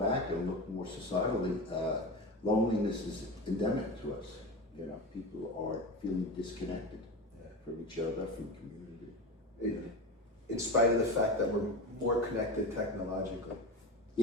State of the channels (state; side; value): normal; both; correlation 0.25